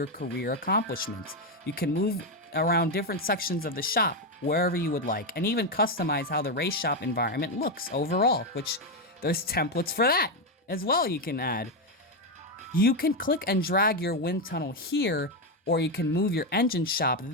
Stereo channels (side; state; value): both; normal; correlation 0.07